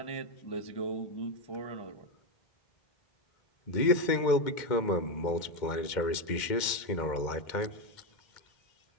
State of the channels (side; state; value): right; late; 2.1 ms